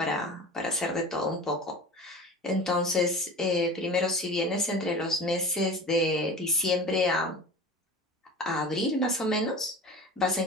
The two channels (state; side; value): normal; both; correlation 0.36